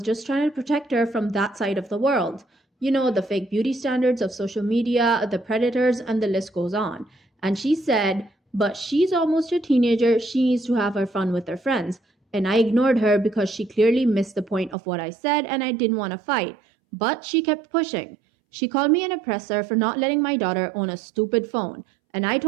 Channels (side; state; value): left; drops out; at 14.8 s